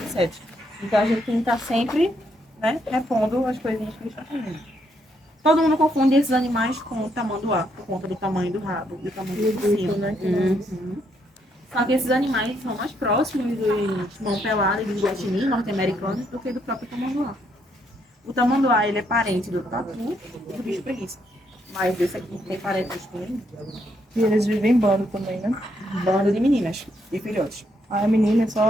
insetos. Então a gente tem que estar sempre, né, repondo as coisinhas que eles estão comendo. Todo mundo confunde esses animais com o tamanduá, por conta do tamanho do rabo e do tamanho do focinho. né? Só que esses animais são mais próximos dos mão pelada e dos guaxinins norte-americanos do que do próprio tamanduá. O tamanduá, ele é parente do tatu e do bicho preguiça. Mas esse aqui tem parentes com ele. E eles vivem em bando também, né? Bando de meninas e filhotes. A menina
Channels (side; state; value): both; normal; correlation 0.75